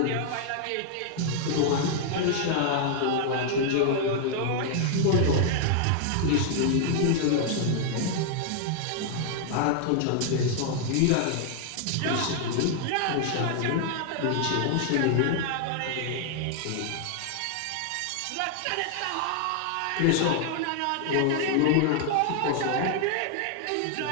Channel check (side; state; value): both; different; correlation 0.00